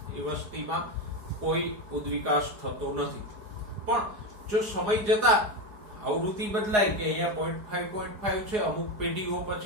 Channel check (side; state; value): left; late; 4.9 ms